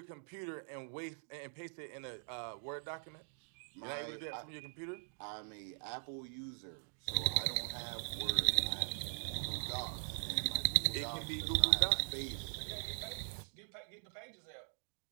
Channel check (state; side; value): silent; left; digital silence